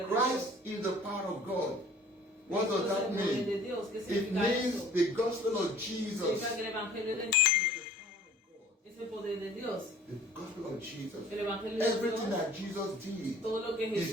Christ is the power of God. What does that mean? It means the gospel of Jesus. The gospel of Jesus. Everything that Jesus did.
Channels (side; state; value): both; normal; correlation 0.51